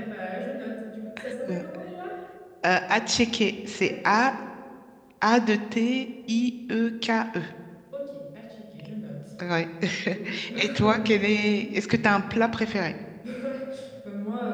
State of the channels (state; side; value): identical; both; correlation 1.00